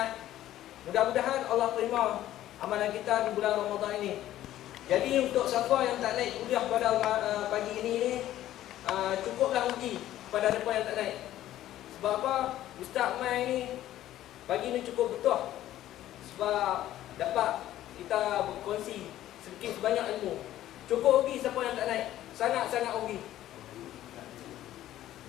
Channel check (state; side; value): quieter; right; 13.4 dB